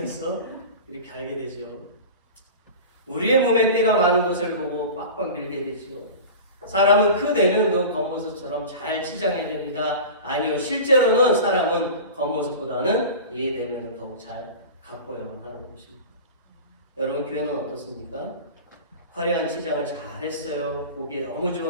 이렇게 알게 되죠. 우리의 몸에 때가 많은 것을 보고 빡빡 밀게 되죠. 사람은 그 내면도 겉모습처럼 잘 치장해야 됩니다. 아니요, 실제로는 사람은 겉모습보다는 이 내면을 더욱 잘 가꿔야만 하는 것입니다. 여러분 교회는 어떻습니까? 화려한 치장을 잘했어요. 보기에 너무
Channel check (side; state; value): both; inverted; correlation -0.33